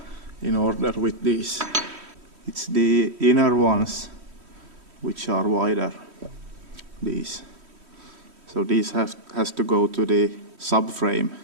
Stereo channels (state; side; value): late; left; 3.1 ms